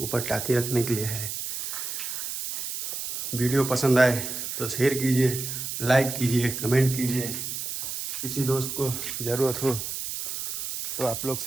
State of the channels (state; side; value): noise; right; hiss, 5 dB below the sound